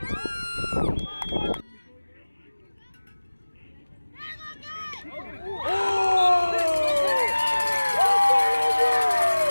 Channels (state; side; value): inverted; both; correlation -1.00